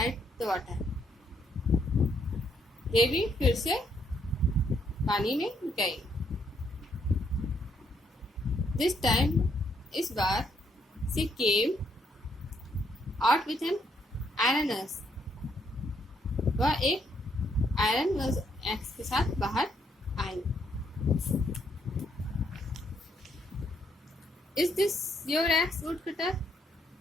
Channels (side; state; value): both; normal; correlation 0.73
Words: the water, देवी फिर से पानी में गई। दिस टाइम, इस बार, she came out with an iron axe, वह एक आयरन एक्स के साथ बाहर आई। Is this your axe woodcutter,